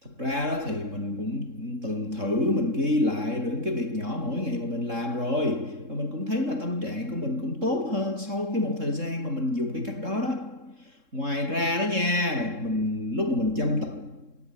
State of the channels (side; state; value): left; late; 3.7 ms